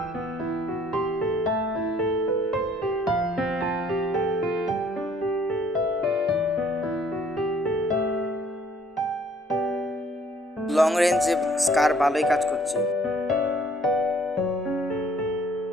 লং রেঞ্জে স্কার ভালোই কাজ করছে।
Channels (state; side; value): normal; both; correlation 0.60